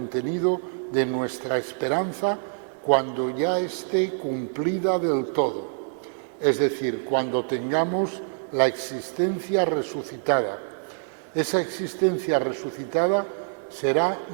de nuestra esperanza cuando ya esté cumplida del todo, es decir, cuando tengamos la existencia resucitada. Esa existencia resucitada será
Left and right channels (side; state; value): left; silent; 58 dB below the other